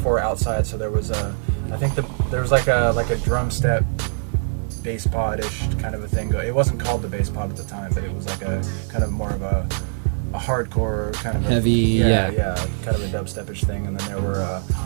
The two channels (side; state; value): left; silent; digital silence